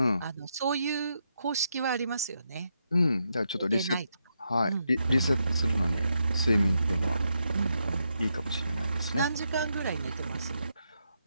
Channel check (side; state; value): both; inverted; correlation -0.82